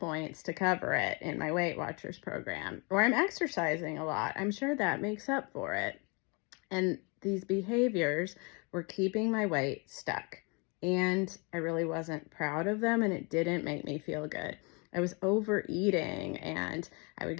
to cover it in my Weight Watchers program. Or I'm exercising a lot. I'm sure that makes up for it. And these behaviors were keeping my weight stuck. And I really wasn't proud of them, and it didn't make me feel good. I was overeating, and I would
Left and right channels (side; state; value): right; quieter; 31.3 dB